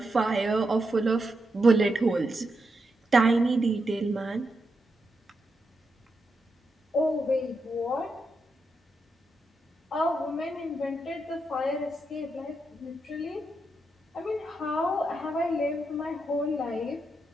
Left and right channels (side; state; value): both; normal; correlation 0.84